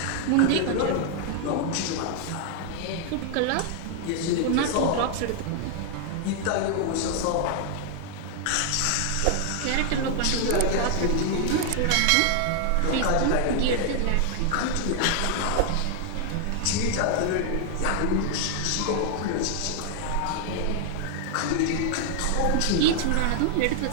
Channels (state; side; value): different; both; correlation 0.00